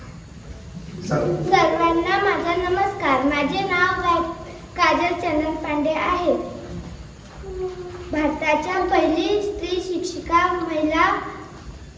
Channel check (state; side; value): identical; both; correlation 1.00